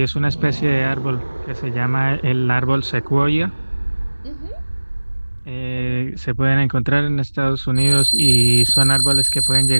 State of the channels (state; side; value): inverted; both; correlation -1.00